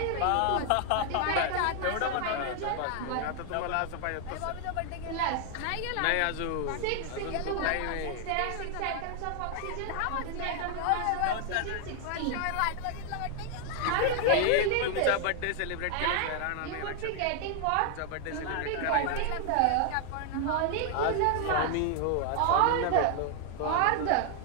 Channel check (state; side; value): different; both; correlation 0.00